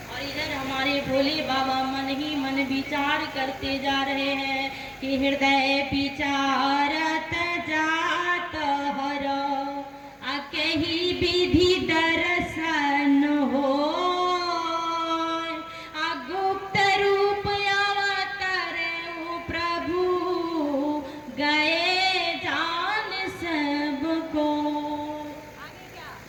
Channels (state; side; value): identical; both; correlation 1.00